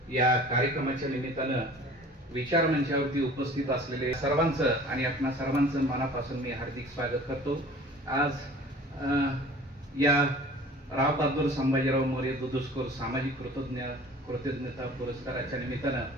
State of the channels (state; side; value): normal; both; correlation 0.46